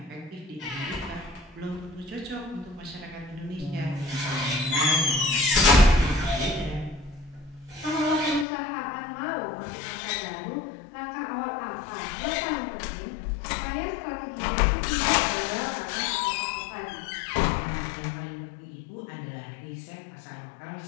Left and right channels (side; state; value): right; drops out; at 8.5 s